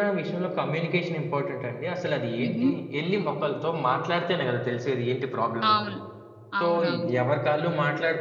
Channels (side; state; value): both; identical; correlation 1.00